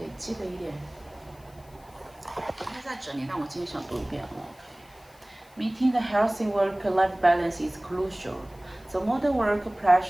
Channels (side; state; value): left; noise; hiss, 28 dB below the sound